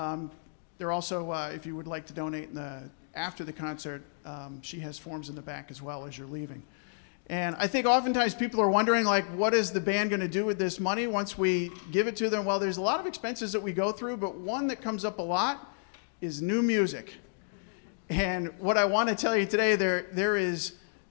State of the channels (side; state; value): right; silent; digital silence